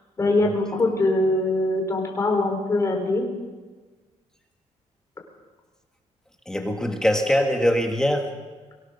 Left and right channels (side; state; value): both; normal; correlation 0.80